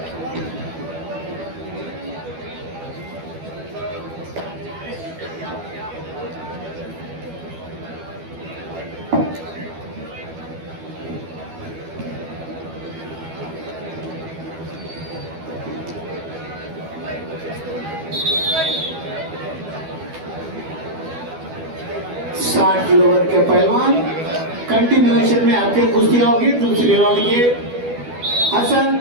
साठ किलो वर्ग के पहलवान कंटिन्यूएशन में आपके कुश्तियां होगी। दूसरी राउंड के हसन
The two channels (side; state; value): left; late; 12 ms